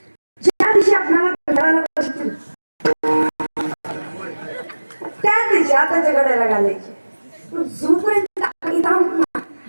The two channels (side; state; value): both; inverted; correlation -1.00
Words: ज्या दिवशी आपल्याला भेटायला बसतील त्या दिवशी हाताच्या घड्याला घालायचे. जोपर्यंत आपण इथं आहोत ना